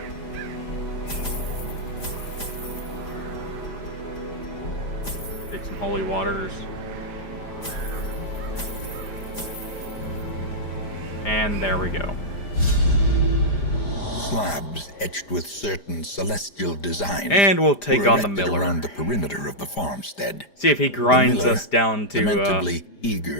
Take some holy waters. And there we go. Slabs etched with certain celestial designs. And we'll take were on the erected miller. around the perimeter of the farmstead. See if he grinds The miller, us down to lamentably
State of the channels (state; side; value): late; right; 5.0 ms